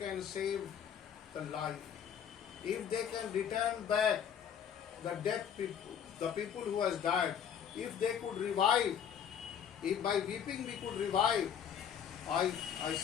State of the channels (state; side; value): quieter; right; 8.4 dB